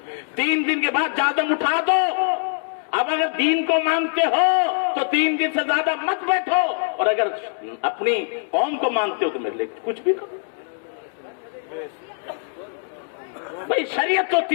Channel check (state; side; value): silent; right; 64 dB below the other